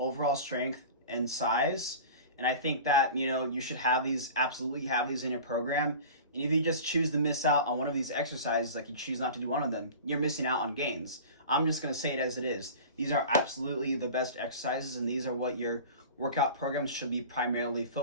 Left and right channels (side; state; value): both; inverted; correlation -0.36